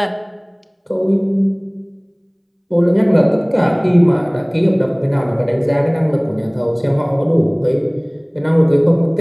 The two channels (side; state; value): both; identical; correlation 1.00